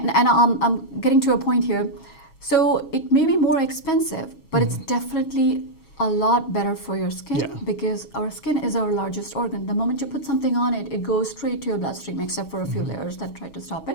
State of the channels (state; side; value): late; right; 6.3 ms